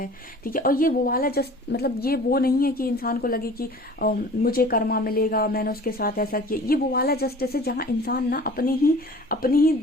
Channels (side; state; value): both; normal; correlation 0.45